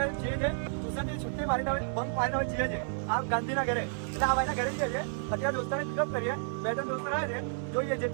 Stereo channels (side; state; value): left; silent; 57 dB below the other